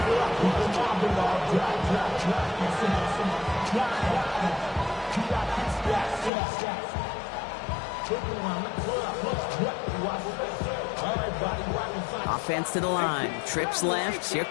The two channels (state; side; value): drops out; right; at 6.3 s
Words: Offense to the line. Trips left. Here